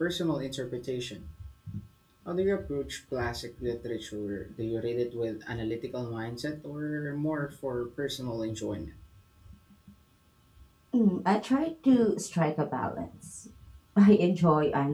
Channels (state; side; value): identical; both; correlation 1.00